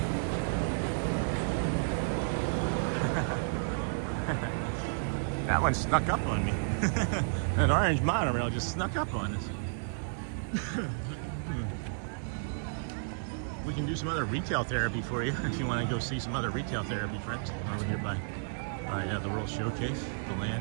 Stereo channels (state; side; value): silent; left; digital silence